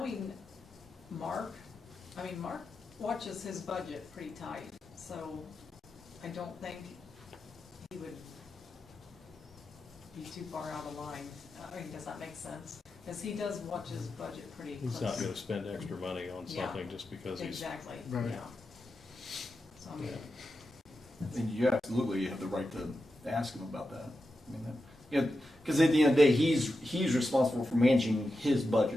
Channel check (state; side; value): normal; both; correlation 0.90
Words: Mark watches his budget pretty tight, so I don't think he would be too far out of line. I mean, does that make sense? Because he does watch his budget pretty close. He's not gonna spend extra money on Yeah. something just because he's. Exactly, Right. yeah. So, I mean, And you absolutely have the right to ask him about that. I mean, yeah, because at the end of the day, he's responsible for managing his